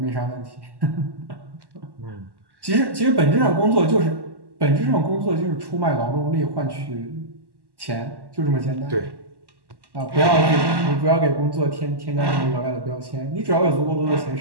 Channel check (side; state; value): left; late; 1.1 ms